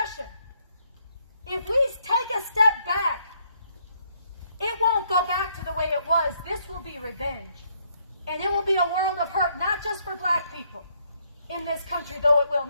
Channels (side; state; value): both; inverted; correlation -0.72